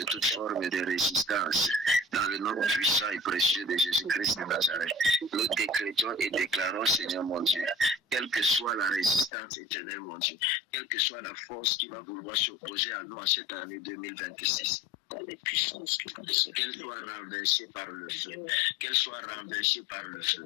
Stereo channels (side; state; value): right; drops out; at 9.3 s